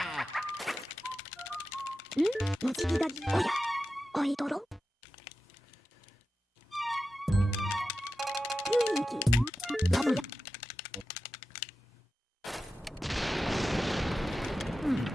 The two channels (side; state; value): both; normal; correlation 0.92